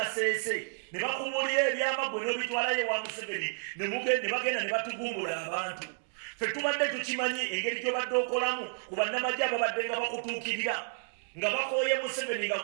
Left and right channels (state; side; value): silent; left; digital silence